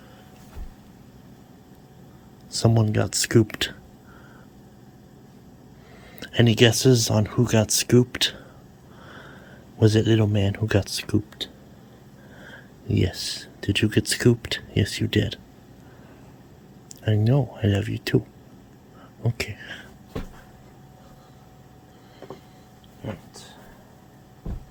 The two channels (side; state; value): both; identical; correlation 1.00